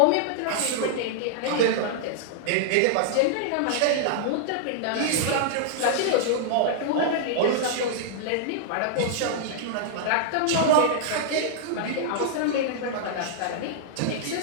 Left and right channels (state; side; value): different; both; correlation -0.01